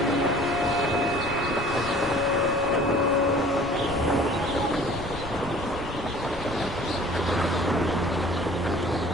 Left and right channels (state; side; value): normal; both; correlation 0.49